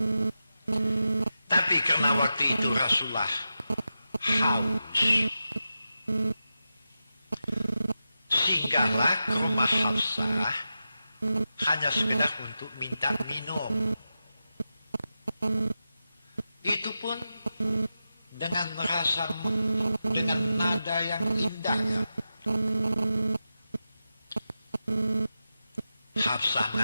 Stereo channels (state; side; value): inverted; both; correlation -0.91